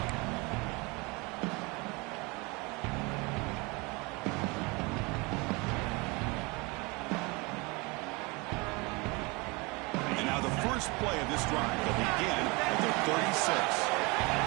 And now the first play of this drive will begin at the 36.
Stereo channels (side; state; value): left; quieter; 26.7 dB